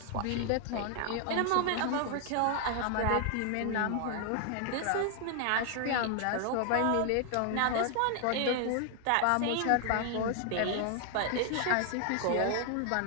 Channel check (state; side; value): different; both; correlation 0.00